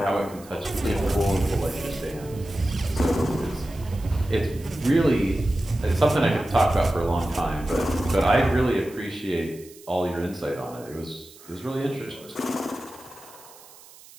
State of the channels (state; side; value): noise; right; hiss, 22 dB below the sound